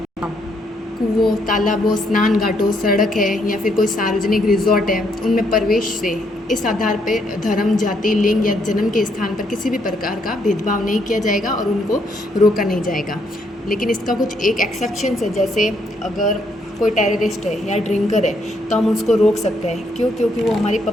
कुओं, तालाबों, स्नान घाटों, सड़क है या फिर कोई सार्वजनिक रिजॉर्ट है, उनमें प्रवेश से इस आधार पर धर्म, जाति, लिंग या जन्म के स्थान पर किसी भी प्रकार का भेदभाव नहीं किया जाएगा और उनको रोका नहीं जाएगा। लेकिन इसका कुछ एक एक्सेप्शंस है, जैसे अगर कोई टेररिस्ट है या ड्रिंकर है तो हम उसको रोक सकते हैं। क्यों? क्योंकि वो हमारी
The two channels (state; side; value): normal; both; correlation 0.73